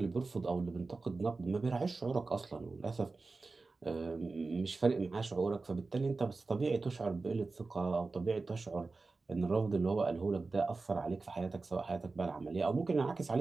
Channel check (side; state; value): left; quieter; 3.8 dB